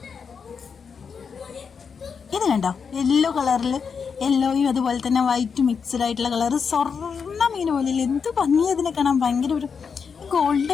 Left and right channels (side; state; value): right; quieter; 6.1 dB